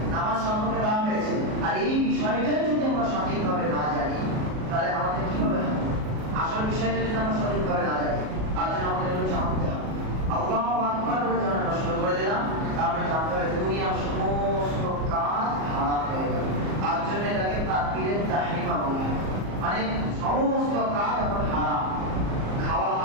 নামাজ সম্পর্কে দেওয়া হয়েছে। আর এই বিষয়টাই যদি আমরা সঠিকভাবে না জানি তাহলে আমাদের কি হবে? আসল বিষয়টা যদি আমরা সঠিকভাবে না জানি তার জন্য আমাদের এগুলো জানতে হবে। আল্লাহু আকবার বলে যখন আমরা শুরু করে দিলাম, তারপরে জানতে হবে দুনিয়ার সমস্ত কাজ হারাম হয়ে গেল। তার জন্য এটাকে তাকবীরে তাহরিমা বলা হয়, মানে সমস্ত কাজ এখন হারাম। খাওয়া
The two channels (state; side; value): late; left; 37 ms